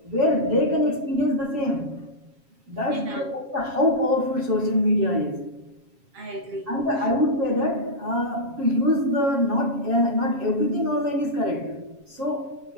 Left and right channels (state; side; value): late; left; 7.3 ms